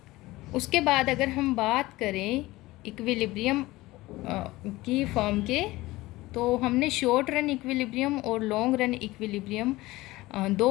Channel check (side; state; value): right; quieter; 19.1 dB